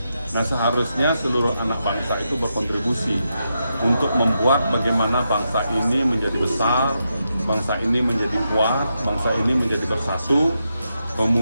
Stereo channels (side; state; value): both; inverted; correlation -0.85